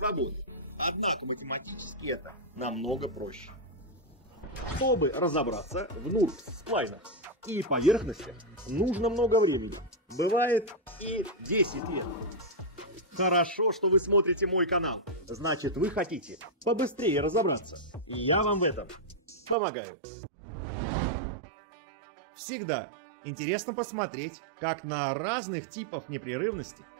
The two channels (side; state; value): left; drops out; at 19.6 s